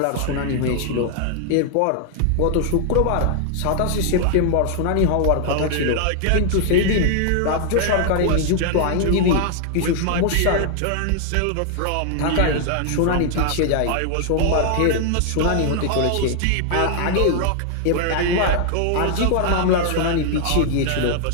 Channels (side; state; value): both; different; correlation 0.00